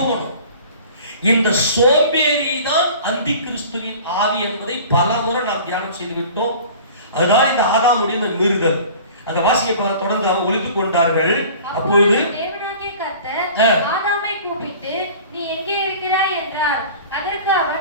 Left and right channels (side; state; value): both; inverted; correlation -0.43